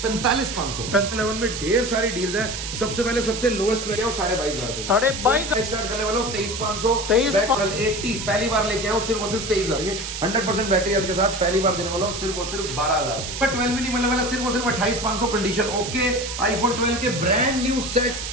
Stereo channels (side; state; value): right; noise; hiss, 6 dB below the sound